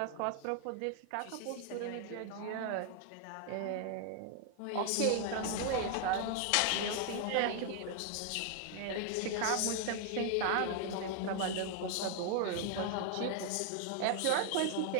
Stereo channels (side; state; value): both; different; correlation 0.00